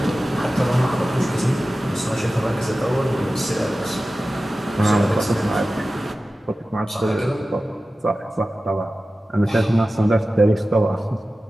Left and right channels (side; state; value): both; normal; correlation 0.95